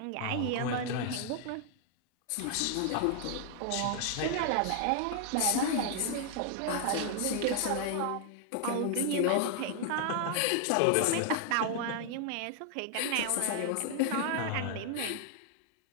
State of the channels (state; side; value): different; both; correlation 0.00